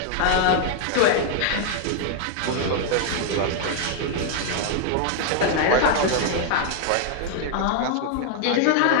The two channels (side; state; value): both; different; correlation 0.00